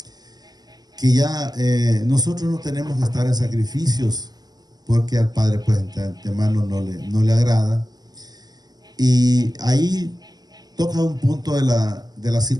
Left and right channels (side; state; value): left; late; 0.19 ms